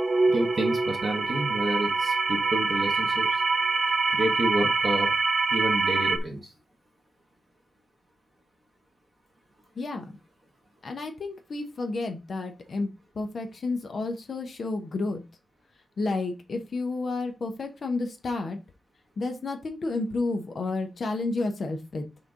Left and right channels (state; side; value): normal; both; correlation 0.88